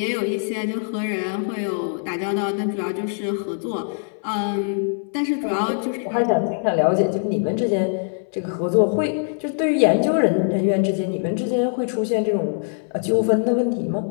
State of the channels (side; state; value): right; silent; 64 dB below the other